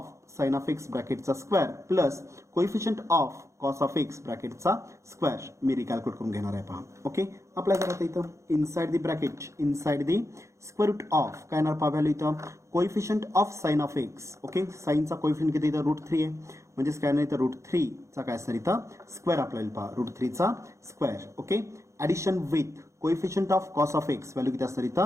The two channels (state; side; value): late; left; 0.14 ms